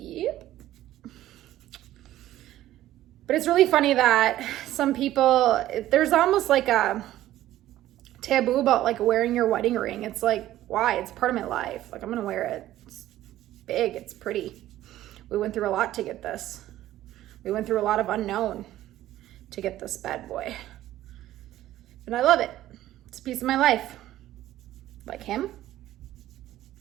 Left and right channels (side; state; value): left; quieter; 14.0 dB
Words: But it's really funny that some people, there's almost like a taboo about like wearing your wedding ring. It's like, why? It's part of my life. Like, I'm gonna wear it. It's big, it's pretty. We went through a lot to get this. We went through a lot of unknown to get this bad boy. And I love it. It's a piece of my life. Like him,